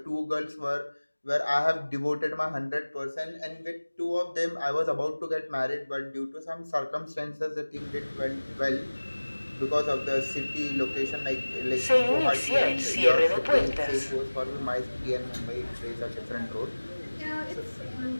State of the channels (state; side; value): inverted; both; correlation -1.00